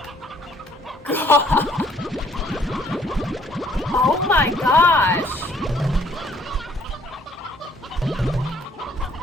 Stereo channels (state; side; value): normal; both; correlation 0.62